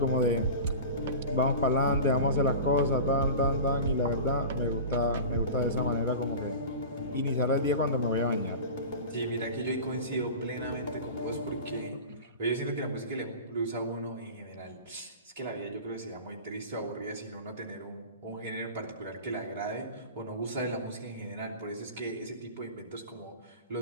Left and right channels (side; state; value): both; inverted; correlation -0.32